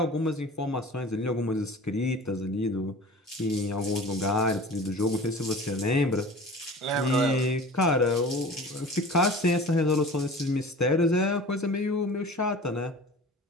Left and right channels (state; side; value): normal; both; correlation 0.41